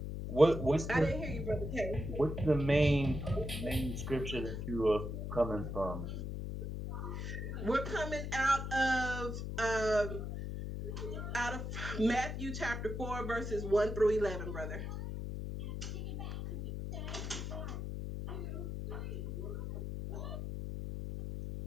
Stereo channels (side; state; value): left; noise; hum, 4 dB below the sound